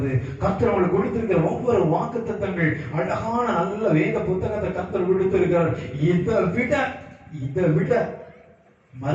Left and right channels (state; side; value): identical; both; correlation 1.00